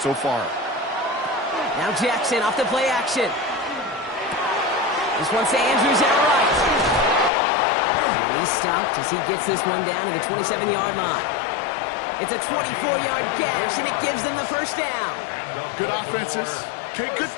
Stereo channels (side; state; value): right; drops out; at 7.3 s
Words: far. Now Jackson off the play action. This one's to Andrews out right. And he's stopped as he gets this one down to the 27-yard line. It's a 24-yard gash, and it gives them the first down. Good offenses. Okay, good